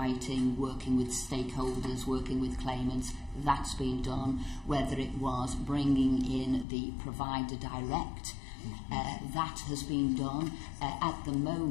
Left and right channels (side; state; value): right; drops out; at 6.7 s